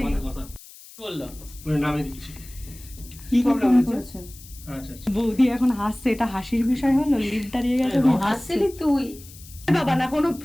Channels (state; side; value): noise; left; hiss, 19 dB below the sound